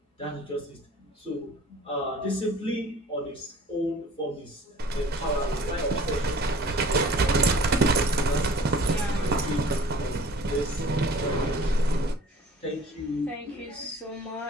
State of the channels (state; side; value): normal; both; correlation 0.47